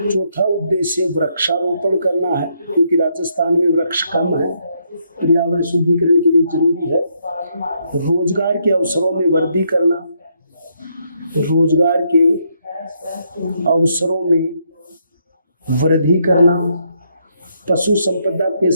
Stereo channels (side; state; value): both; inverted; correlation -0.75